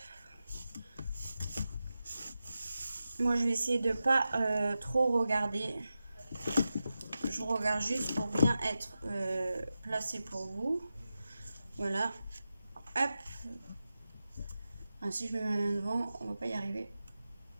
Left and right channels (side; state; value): both; inverted; correlation -0.92